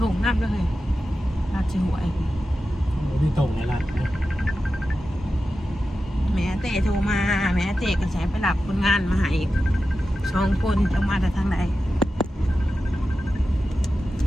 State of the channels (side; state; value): both; normal; correlation 0.92